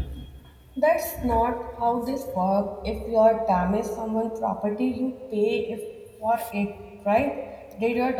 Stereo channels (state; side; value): identical; both; correlation 1.00